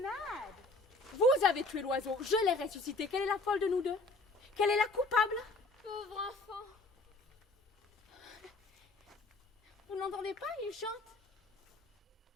mad. Vous avez tué l'oiseau, je l'ai ressuscité. Quelle est la folle de nous deux? Quelle est la coupable? Pauvre enfant. Vous n'entendez pas, il chante.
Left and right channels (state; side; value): quieter; right; 3.1 dB